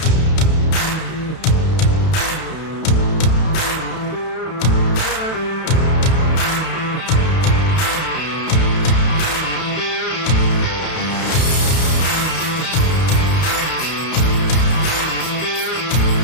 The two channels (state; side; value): late; right; 32 ms